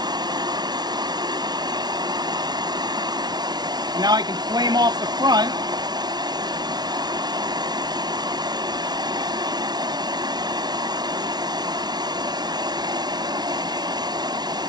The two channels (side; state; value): left; late; 0.19 ms